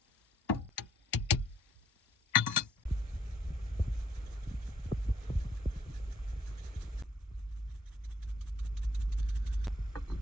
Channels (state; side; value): normal; both; correlation 0.68